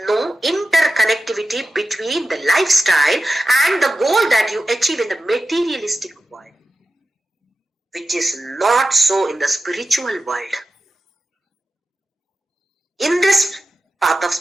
no interconnectivity between the lifestyle and the goal that you achieve in the materialistic world, which is not so in the spiritual world. In this path of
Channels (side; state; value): both; normal; correlation 0.92